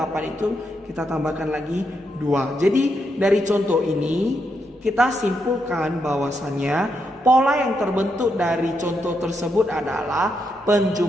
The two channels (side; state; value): both; normal; correlation 0.81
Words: itu kita tambahkan lagi 2. Jadi dari contoh ini kita simpulkan bahwasannya pola yang terbentuk dari contoh tersebut adalah